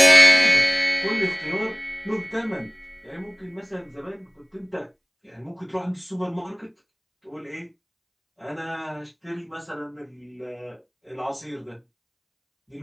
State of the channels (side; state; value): both; identical; correlation 1.00